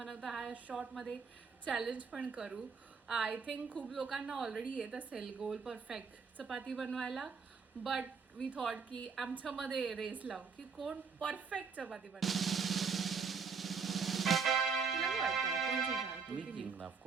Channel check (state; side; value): quieter; left; 5.4 dB